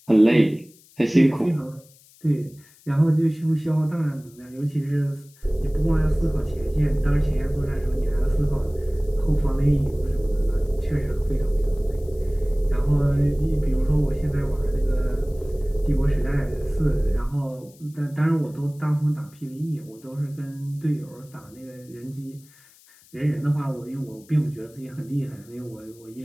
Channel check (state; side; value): noise; left; hiss, 27 dB below the sound